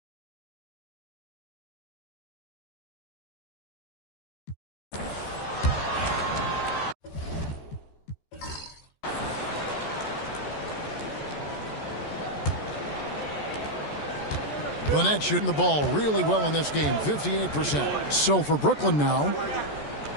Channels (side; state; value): right; late; 14 ms